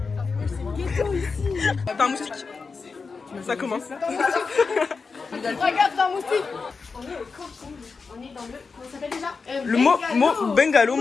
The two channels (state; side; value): quieter; right; 4.8 dB